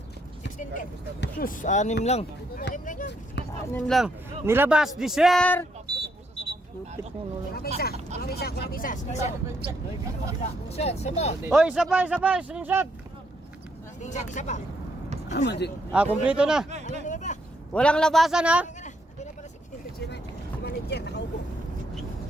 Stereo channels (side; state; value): both; normal; correlation 0.74